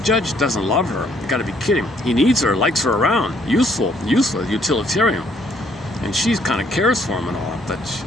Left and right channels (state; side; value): normal; both; correlation 0.67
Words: doesn't love her. You got to be kidding. He needs her, likes her around, useful, utilitarian, and she kind of cares for him and all. But